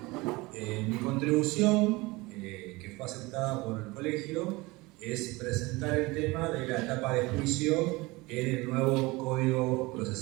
Mi contribución, que fue aceptada por el colegio, es presentar el tema de la etapa de juicio en el nuevo Código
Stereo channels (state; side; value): quieter; left; 22.6 dB